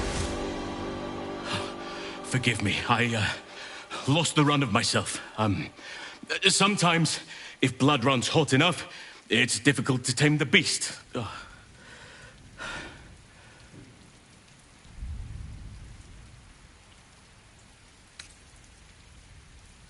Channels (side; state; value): both; identical; correlation 1.00